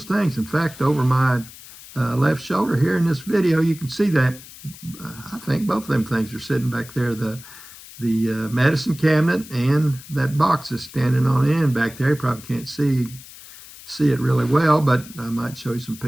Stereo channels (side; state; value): left; noise; hiss, 18 dB below the sound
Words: things. In fact, over my left shoulder here in this video, you can see that I think both of them things are sitting back there. The medicine cabinet and that box is standing on end back there. You probably can't see it really well, but I might show you some